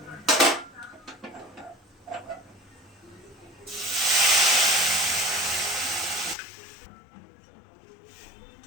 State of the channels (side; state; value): right; drops out; at 6.4 s